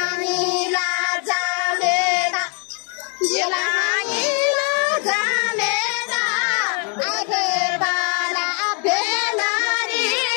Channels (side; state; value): right; quieter; 38.7 dB